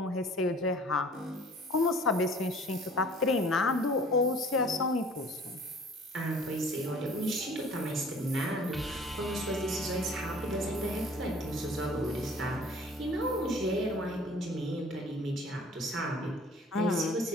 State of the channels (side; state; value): both; normal; correlation 0.50